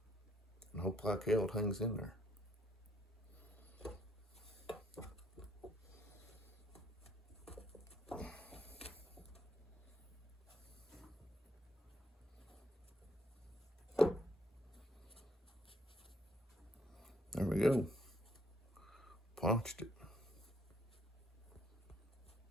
hope like hell it hangs in there. There we go. Punched it.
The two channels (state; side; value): normal; both; correlation 0.70